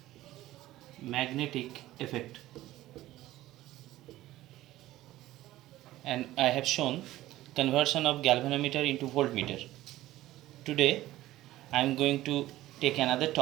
And I have shown conversion of galvanometer into voltmeter. Today I am going to take another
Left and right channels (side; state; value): left; quieter; 15.7 dB